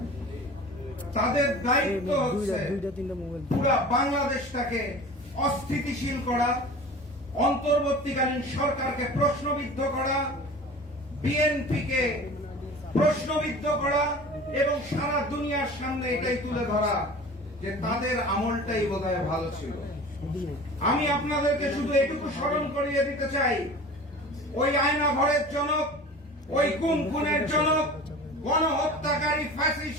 তাদের দায়িত্ব হচ্ছে পুরা বাংলাদেশটাকে অস্থিতিশীল করা, অন্তর্বর্তীকালীন সরকারকে প্রশ্নবিদ্ধ করা, বিএনপিকে প্রশ্নবিদ্ধ করা এবং সারা দুনিয়ার সামনে এটাই তুলে ধরা যে তাদের আমলটাই বোধহয় ভালো ছিল। আমি আপনাদেরকে শুধু এটুকু স্মরণ করিয়ে দিতে চাই, ওই আয়না ঘরের জনক, ওই খুনের জনক, গণহত্যাকারী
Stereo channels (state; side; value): normal; both; correlation 0.39